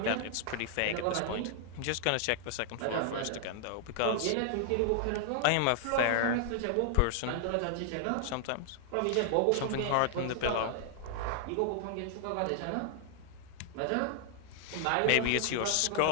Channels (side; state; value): both; different; correlation 0.00